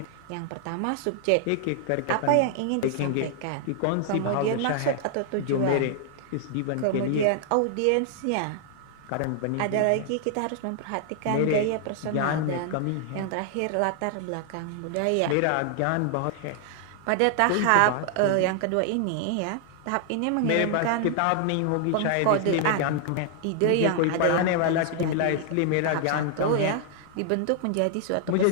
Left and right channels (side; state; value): both; different; correlation 0.00